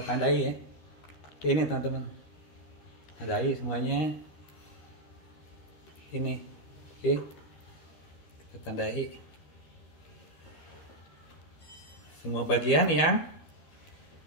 tandai ya. Ini teman-teman. Tandai semuanya. Ini. Oke. Kita tandai. Semua bagian yang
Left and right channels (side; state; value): right; late; 12 ms